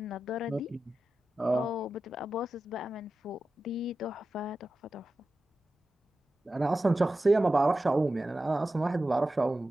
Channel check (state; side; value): normal; both; correlation 0.93